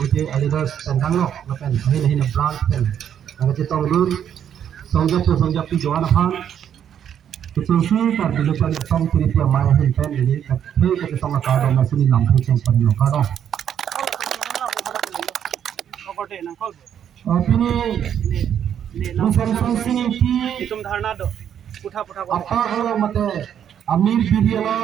leaders tentang no lapen hin branch pen ang jetong lur songjap pi joan han Kecuali kar dulu cari song kiri dia mai hin pen ini tapi kita song ka do masih ni lam kucing pan no ka do Opini song sing ki तुम धारणा दो पुठा apa kalau mate Amir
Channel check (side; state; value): left; quieter; 9.2 dB